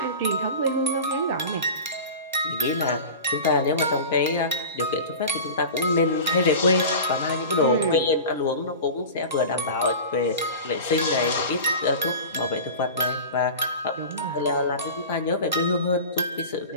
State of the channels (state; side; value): inverted; both; correlation -0.33